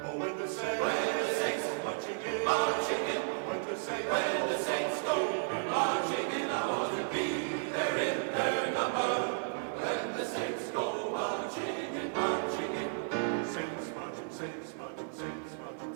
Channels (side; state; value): left; silent; 55 dB below the other